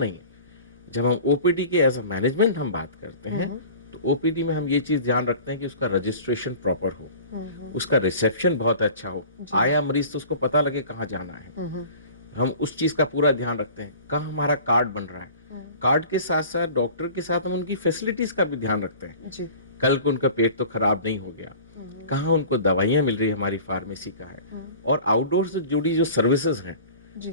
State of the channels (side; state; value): both; inverted; correlation -0.42